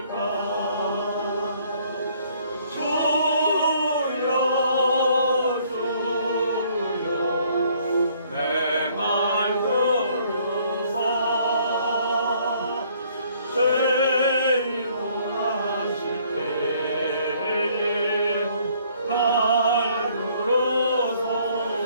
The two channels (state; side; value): inverted; both; correlation -0.62